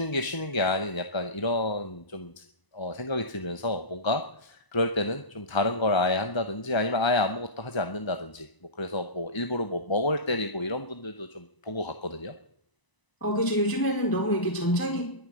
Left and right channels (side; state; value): right; late; 1.0 ms